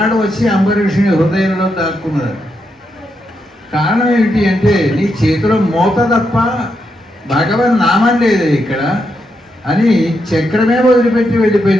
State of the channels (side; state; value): both; normal; correlation 0.82